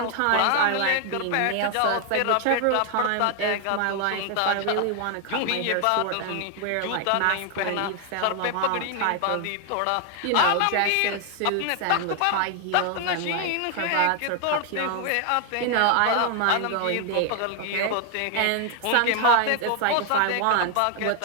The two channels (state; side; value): different; both; correlation 0.00